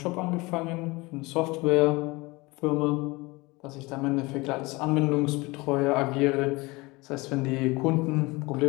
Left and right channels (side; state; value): right; quieter; 23.6 dB